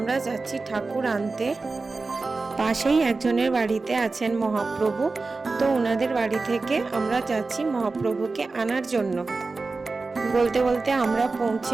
যাচ্ছি ঠাকুর আনতে। পাশেই একজনের বাড়িতে আছেন মহাপ্রভু, তো ওনাদের বাড়ি থেকে আমরা যাচ্ছি মহাপ্রভুকে আনার জন্য। বলতে বলতে আমরা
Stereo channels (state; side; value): quieter; left; 3.8 dB